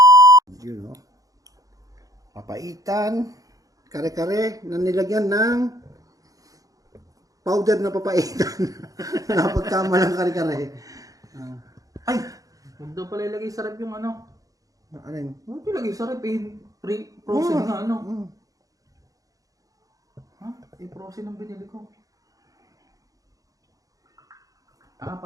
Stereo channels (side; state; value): left; late; 0.17 ms